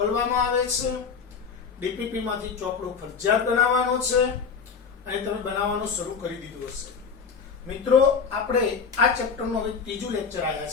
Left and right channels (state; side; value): quieter; right; 5.8 dB